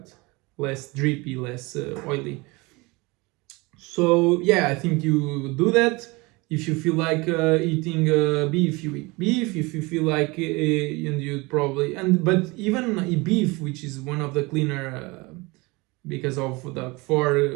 less drippy, less oily. So yeah, I think you do that. If you feel like eating beef, you eat beef. If you feel like and you probably, but even beef, which is one of the cleaner because of the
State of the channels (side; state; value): left; quieter; 24.9 dB